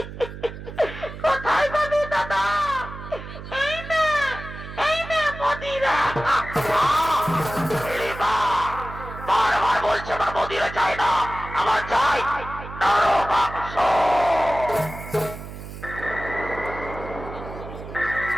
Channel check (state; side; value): noise; right; hum, 11 dB below the sound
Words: কোথায় পাবি দাদা? এই না মদিরা। হিড়িম্বা বারবার বলছে আমার মদিরা চাই না, আমার চাই নরম মাংস।